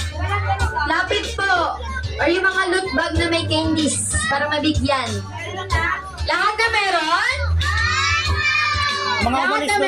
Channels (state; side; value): noise; left; rumble, 27 dB below the sound